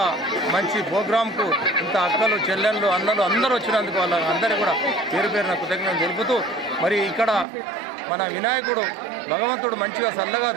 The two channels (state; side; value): drops out; left; at 7.5 s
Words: మంచి ప్రోగ్రాంకు ఇంత అక్కలు చెల్లెళ్ళు అన్నలు అందరూ వచ్చినందుకు వాళ్ళ అందరూ కూడా పేరు పేరున కృతజ్ఞతలు తెలుపుతూ మరి ఇక్కడ మన వినాయకుడు భగవంతుడు మంచిగా చల్లగా